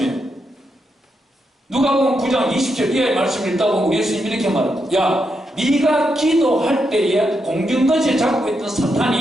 누가복음 9장 20절 이하의 말씀을 읽다 보면 우리 예수님 이렇게 말합니다. 야, 네가 기도할 때에 공중권세 잡고 있던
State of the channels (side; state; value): both; normal; correlation 0.83